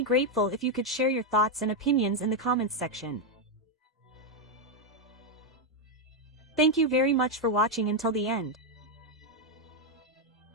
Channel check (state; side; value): normal; both; correlation 0.02